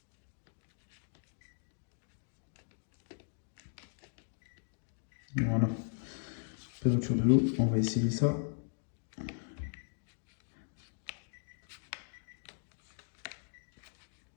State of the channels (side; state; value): right; silent; digital silence